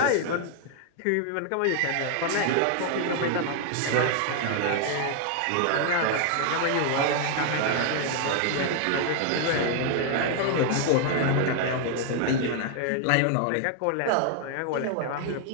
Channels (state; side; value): different; both; correlation 0.00